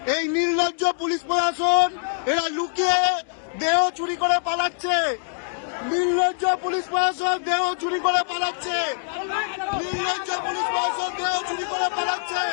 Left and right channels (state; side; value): silent; right; digital silence